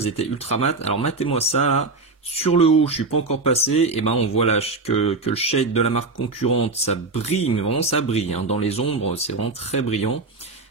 étaient ultra mat, alors matez-moi ça là. Sur le haut, je suis pas encore passé, et on voit là que le shade de la marque concurrente, ça brille, mais vraiment ça brille, hein. Dans les ombres, c'est vraiment très brillant.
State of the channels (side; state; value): left; quieter; 3.6 dB